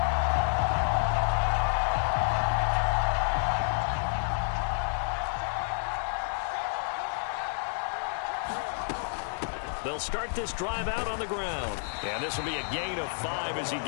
They'll start this drive out on the ground. And this will be a gain of 5 as he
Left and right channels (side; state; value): right; silent; digital silence